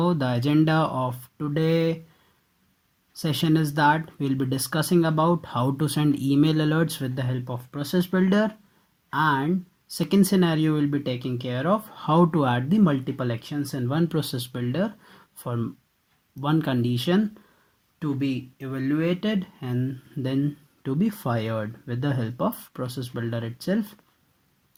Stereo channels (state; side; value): identical; both; correlation 1.00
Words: the agenda of today session is that we'll be discussing about how to send email alerts with the help of Process Builder, and second scenario will be taking care of how to add the multiple actions in one Process Builder for one condition to be evaluated and then to be fired with the help of Process Builder itself.